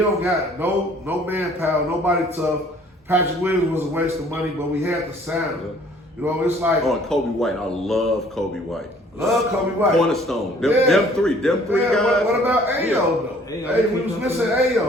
got no manpower, nobody tough. Patrick Williams was a waste of money, but we had to sign him. Yeah. You know, it's like and Kobe White. I love Kobe White. Love Kobe White. Cornerstone. Them three guys. What about Ayo though? Hey, we was missing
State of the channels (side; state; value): both; normal; correlation 0.56